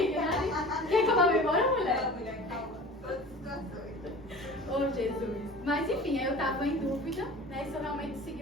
Quer que eu vá embora, mulher? Não, mulher, calma. Todas as situações. Oh, Jesus. Mas enfim, aí eu estava em dúvida, né, se eu realmente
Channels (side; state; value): both; normal; correlation 0.40